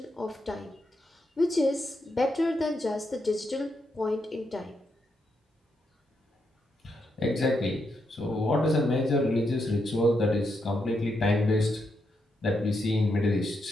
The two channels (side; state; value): both; normal; correlation 0.81